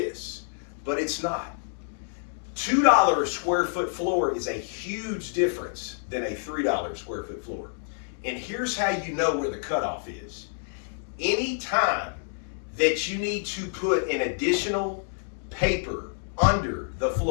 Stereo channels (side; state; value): right; silent; digital silence